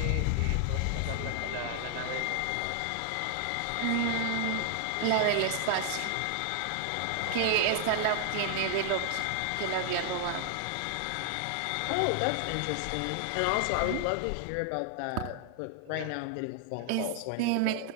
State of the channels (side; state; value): both; different; correlation 0.00